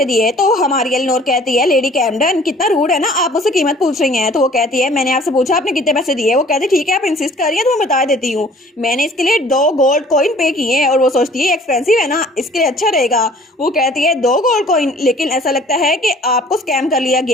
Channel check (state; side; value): normal; both; correlation 0.53